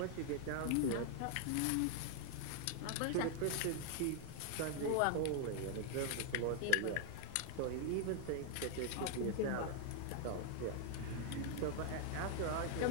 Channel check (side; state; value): both; different; correlation 0.00